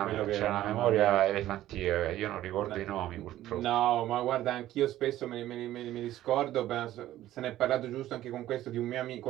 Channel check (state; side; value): quieter; left; 13.9 dB